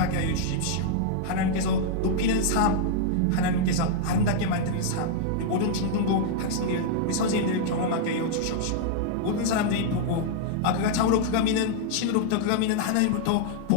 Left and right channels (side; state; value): both; different; correlation -0.01